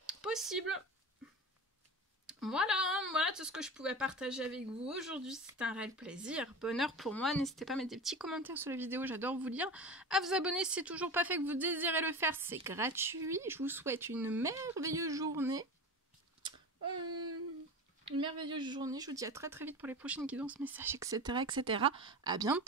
Possible. Voilà tout ce que je pouvais partager avec vous aujourd'hui. C'est un réel plaisir, bonheur pour moi. N'hésitez pas à mettre des petits commentaires sur la vidéo, j'adore vous lire. À vous abonner si c'est toujours pas fait, que vous désirez le faire, c'est gratuit. Je vous souhaite une merveilleuse journée. Je vous dis à très très vite pour les prochaines guidances, messages, etc. À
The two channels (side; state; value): both; normal; correlation 0.30